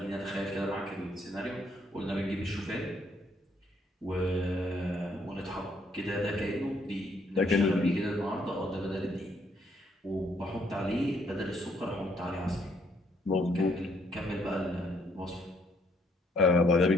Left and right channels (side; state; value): both; normal; correlation 0.69